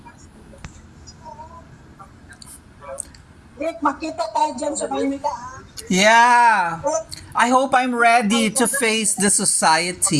Rick, makita tayo dyan sa Maynila. Yeah. I hope I'm ready to face the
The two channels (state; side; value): identical; both; correlation 1.00